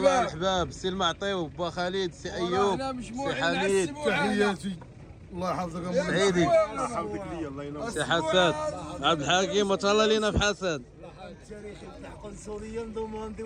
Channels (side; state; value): both; identical; correlation 1.00